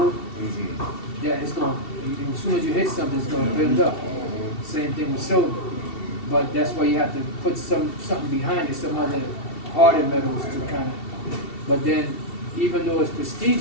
yeah, it's gonna, as soon as you hit something, it's gonna build up. Same thing with silver. But that's why you have to put something behind it, some other harder metals to kind of. But then, even though it's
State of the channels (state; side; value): late; right; 2.7 ms